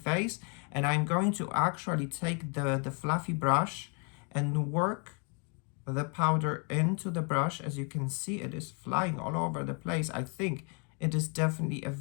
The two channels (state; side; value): quieter; right; 36.5 dB